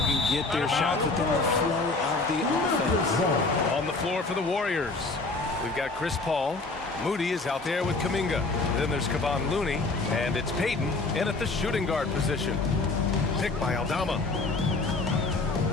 get their shots within the flow of the offense. On the floor for the Warriors, we've got Chris Paul. Moody is out there with Kuminga. Then there's Kevon Looney, and it's Payton in at the shooting guard position. Picked by Aldama.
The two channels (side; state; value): right; quieter; 3.5 dB